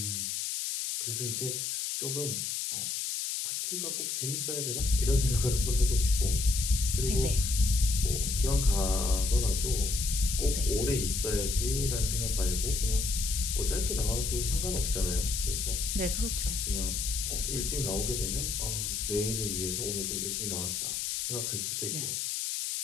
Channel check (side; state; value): left; noise; hiss, 2 dB below the sound